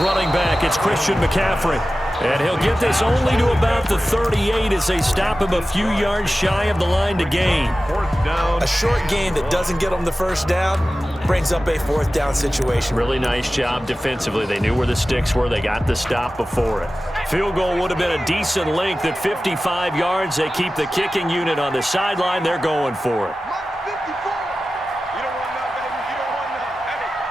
running back. It's Christian McCaffrey. And he'll get this only to about the 38 as they stop him a few yards shy of the line to gain. A short gain that doesn't get them the first down brings up a 4th down situation. Really nice job defensively. They knew where the sticks were. They got the stop before it. Field goal would have been a decent length at 55 yards. They keep the kicking unit on the sideline. They're going for it.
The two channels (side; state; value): both; normal; correlation 0.95